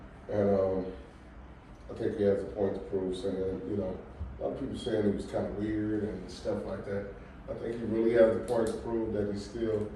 and I think he has a point to prove. Saying, a lot of people saying he was kind of weird and stuff like that. I think he really has a point to prove that he's still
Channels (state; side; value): identical; both; correlation 1.00